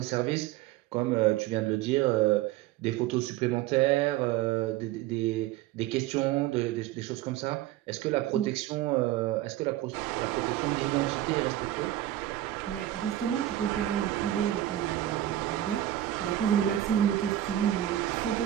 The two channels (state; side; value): quieter; left; 13.6 dB